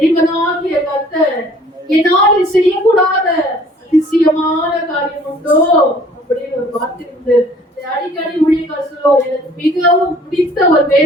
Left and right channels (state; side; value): normal; both; correlation 0.55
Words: கர்த்தர் என்னால் செய்யக்கூடாத அதிசயமான காரியம் உண்டோ அப்படின்னு ஒரு வார்த்தை உண்டு. அடிக்கடி ஊழியர்கள் சொல்லுவார், எனக்கு மிகவும் பிடித்த ஒரு